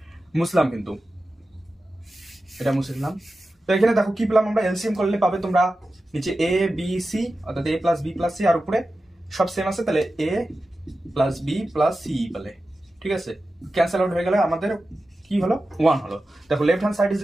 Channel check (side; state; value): both; normal; correlation 0.93